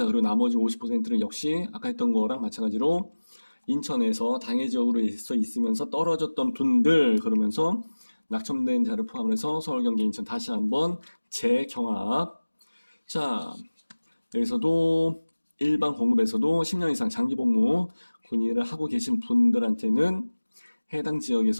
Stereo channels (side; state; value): both; inverted; correlation -1.00